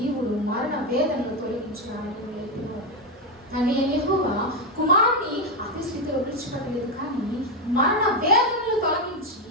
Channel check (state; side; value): normal; both; correlation 0.08